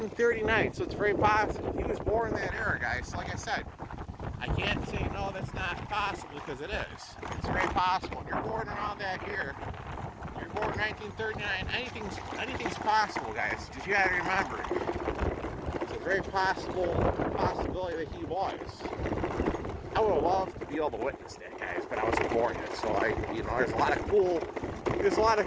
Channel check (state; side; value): identical; both; correlation 1.00